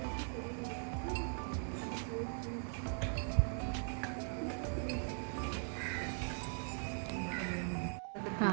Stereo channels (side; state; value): left; silent; 51 dB below the other